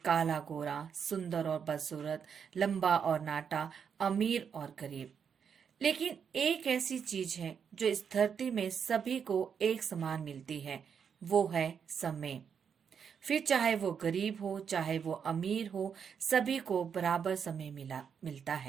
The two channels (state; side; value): quieter; left; 7.1 dB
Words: काला गोरा, सुंदर और बदसूरत, लंबा और नाटा, अमीर और गरीब। लेकिन एक ऐसी चीज है जो इस धरती में सभी को एक समान मिलती है, वो है समय। फिर चाहे वो गरीब हो चाहे वो अमीर हो, सभी को बराबर समय मिलता